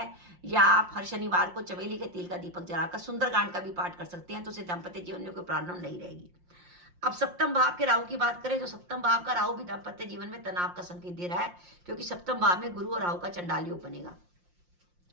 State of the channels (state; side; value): late; left; 5.7 ms